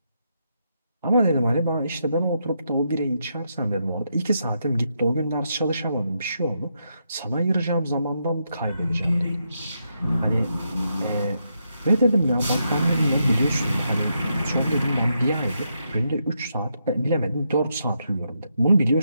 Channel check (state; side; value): inverted; both; correlation -0.81